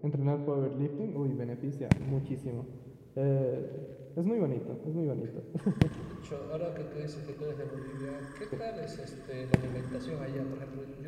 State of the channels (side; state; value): both; identical; correlation 1.00